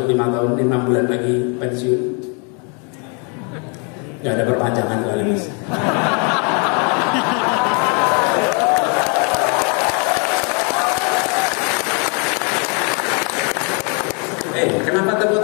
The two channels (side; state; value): right; quieter; 36.2 dB